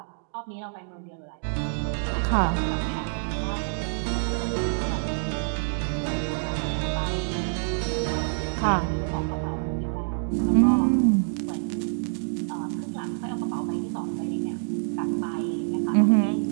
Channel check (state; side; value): silent; left; digital silence